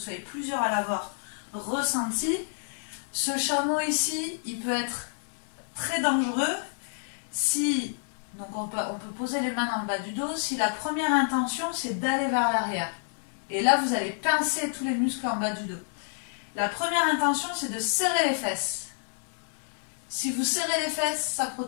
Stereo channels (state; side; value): silent; right; digital silence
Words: plusieurs à l'avoir ressenti. Ce chameau ici, il peut être très dangereux si... Donc on peut poser les mains dans le bas du dos si la première intention c'est d'aller vers l'arrière. Et là vous allez pincer tous les muscles en bas du dos. La première intention c'est de serrer les fesses. Si vous serrez les fesses, ça